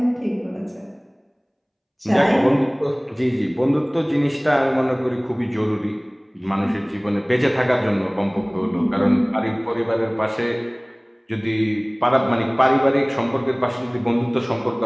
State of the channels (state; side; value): identical; both; correlation 1.00